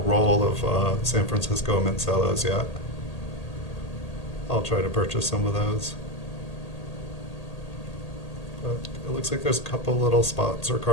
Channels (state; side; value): late; right; 1.8 ms